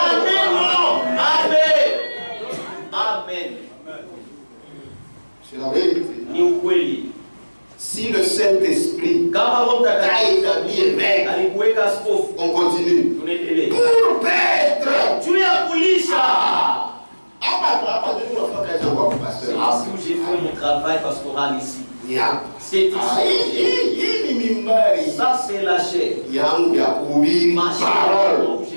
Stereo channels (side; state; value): both; inverted; correlation -1.00